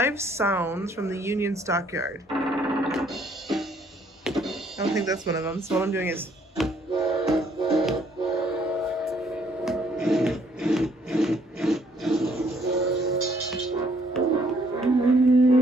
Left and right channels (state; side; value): normal; both; correlation 0.65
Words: sounds from the Union Stockyard. I don't think that's one of them. So what I'm doing is...